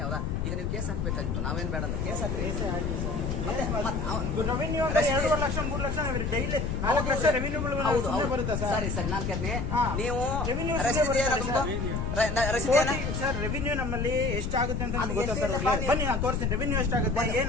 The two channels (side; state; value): left; noise; rumble, 3 dB below the sound